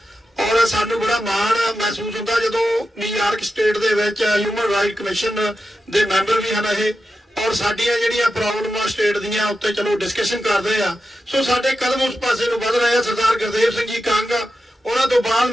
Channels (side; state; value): both; normal; correlation 0.90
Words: ਔਰ ਸਾਨੂੰ ਬੜਾ ਮਾਣ ਮਹਿਸੂਸ ਹੁੰਦਾ ਜਦੋਂ ਨਿਊਯਾਰਕ ਸਟੇਟ ਦੇ ਵਿੱਚ ਹਿਊਮਨ ਰਾਈਟ ਕਮਿਸ਼ਨ ਦੇ ਮੈਂਬਰ ਵੀ ਹਨ ਇਹ, ਔਰ ਸਾਡੀਆਂ ਜਿਹੜੀਆਂ ਪ੍ਰੋਬਲਮਾਂ ਸਟੇਟ ਦੀਆਂ ਉੱਤੇ ਚਲੋ ਡਿਸਕਸ਼ਨ ਕਰਦੇ ਆ। ਸੋ ਸਾਡੇ ਕਦਮ ਉਸ ਪਾਸੇ ਨੂੰ ਵਧ ਰਹੇ ਆ। ਸਰਦਾਰ ਗੁਰਦੇਵ ਸਿੰਘ ਜੀ ਕੰਗ, ਉਹਨਾਂ ਤੋਂ ਬਾਅਦ